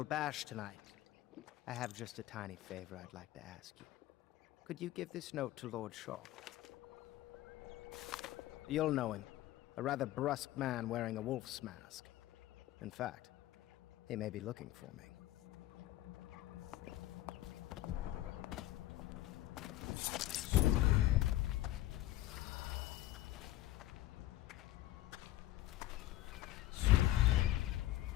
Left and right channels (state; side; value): quieter; right; 15.1 dB